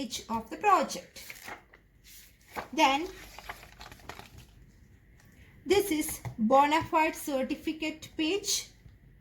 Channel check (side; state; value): both; identical; correlation 1.00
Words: of the project. Then this is bona fide certificate page.